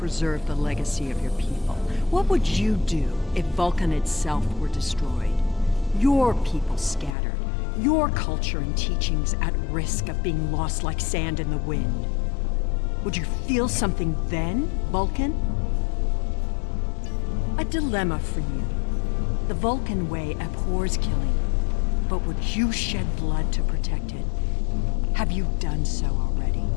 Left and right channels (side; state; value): right; drops out; at 7.2 s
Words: the legacy of your people? What would you do if Vulcan itself were destroyed? Your people scattered, your culture and teachings at risk of being lost like sand in the wind. Would you feel something then, Vulcan? A dilemma for you. The Vulcan way abhors killing, but would you shed blood to protect it? Have you done so already?